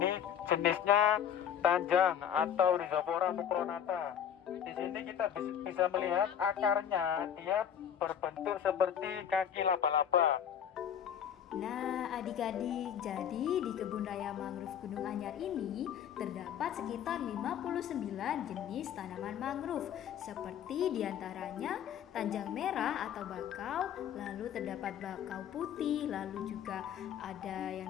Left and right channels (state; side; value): quieter; right; 9.1 dB